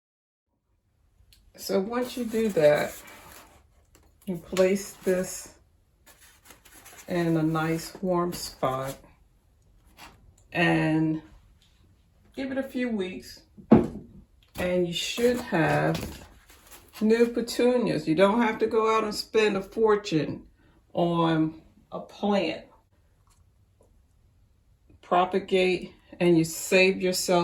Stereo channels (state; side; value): identical; both; correlation 1.00